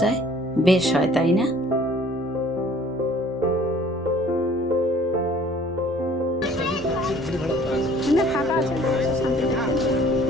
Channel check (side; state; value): both; normal; correlation 0.54